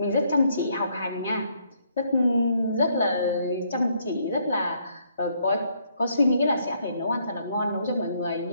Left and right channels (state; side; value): inverted; both; correlation -0.70